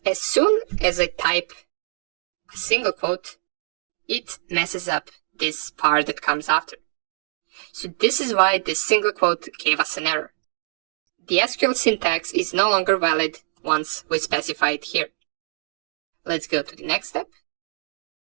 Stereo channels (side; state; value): left; silent; digital silence